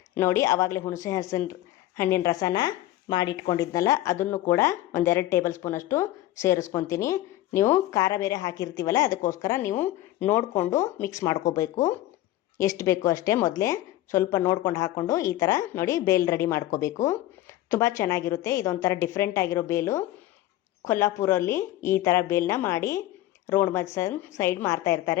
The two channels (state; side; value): quieter; right; 14.8 dB